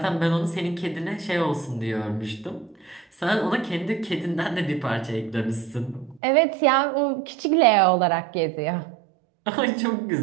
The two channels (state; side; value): drops out; left; at 6.2 s